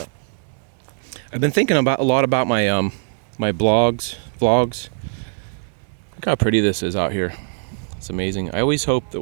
I've been thinking a lot about my my vlogs. Look how pretty this is out here. It's amazing. I always hope that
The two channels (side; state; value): left; silent; digital silence